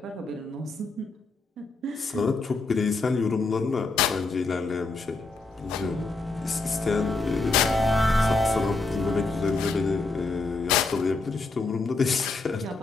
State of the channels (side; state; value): right; quieter; 3.6 dB